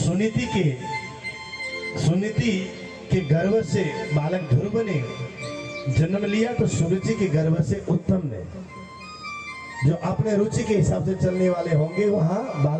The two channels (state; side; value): identical; both; correlation 1.00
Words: सुनीति के गर्भ से बालक ध्रुव ने जन्म लिया, तो सुरुचि के गर्भ से उत्तम ने, जो अपने रुचि के हिसाब से चलने वाले होंगे वहां